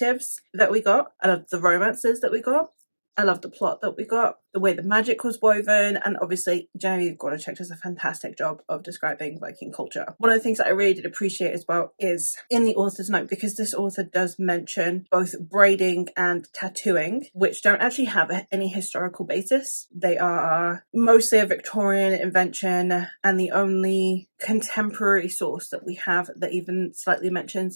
that we got. I loved the romances that we got. I loved the plot that we got, the way the magic was woven, and obviously Genevieve Gornichek does a fantastic job of describing Viking culture. One of the things that I really did appreciate as well is in the author's note, because this author does mention both braiding and tattooing, which don't actually have any historical basis. They are mostly a Victorian invention, and the only contemporary source that we have that even slightly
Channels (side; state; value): both; inverted; correlation -1.00